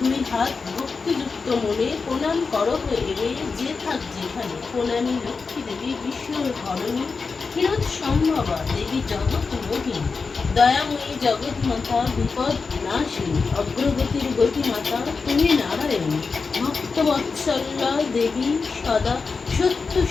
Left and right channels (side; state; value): right; quieter; 4.7 dB